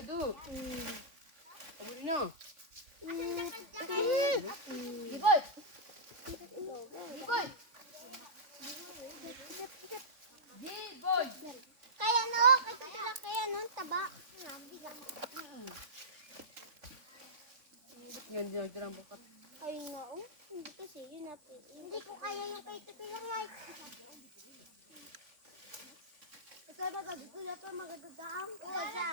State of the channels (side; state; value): left; late; 3.4 ms